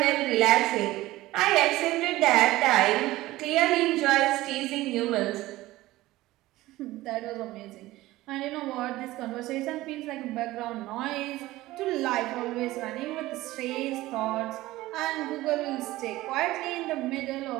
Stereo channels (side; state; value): left; quieter; 17.5 dB